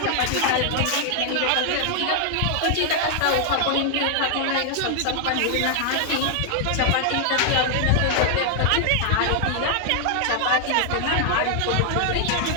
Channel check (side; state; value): both; different; correlation 0.00